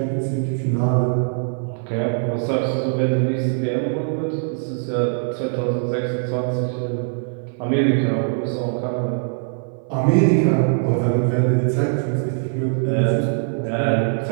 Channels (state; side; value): silent; left; 58 dB below the other